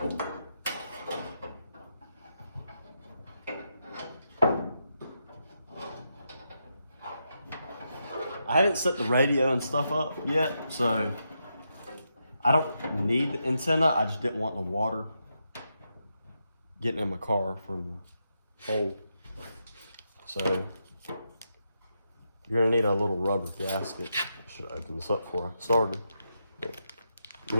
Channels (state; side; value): inverted; both; correlation -0.83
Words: I haven't set the radio and stuff up yet, so I don't need the antenna. I just didn't want the water getting in my car from the hole. So you're gonna need a little rubber gasket. I should open this up before I started. You